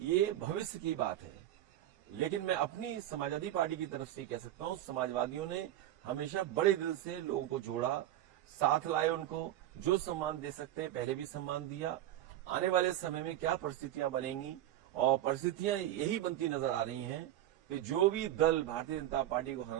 भविष्य की बात है। लेकिन मैं अपनी समाजवादी पार्टी की तरफ से कह सकता हूं, समाजवादियों ने हमेशा बड़े दिल से लोगों को जोड़ा, साथ लाए, उनको जो सम्मान दे सकते हैं पहले भी सम्मान दिया। आने वाले समय में क्या परिस्थितियां बनेंगी, और परिस्थितियां यही बनती नजर आ रही हैं कि जो भी दल भारतीय जनता पार्टी को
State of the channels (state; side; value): quieter; left; 13.0 dB